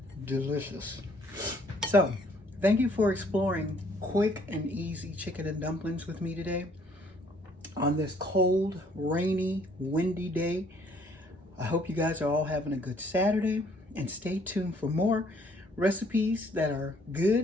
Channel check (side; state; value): both; normal; correlation 0.62